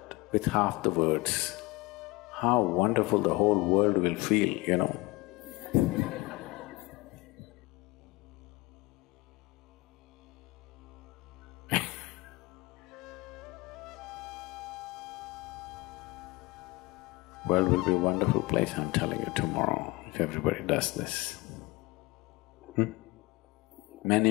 with half the words, how wonderful the whole world will feel, you know. World will be a wonderful place, I'm telling you, tomorrow, if everybody does this.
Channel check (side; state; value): right; quieter; 23.0 dB